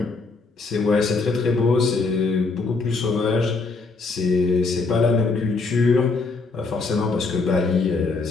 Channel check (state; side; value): quieter; right; 4.0 dB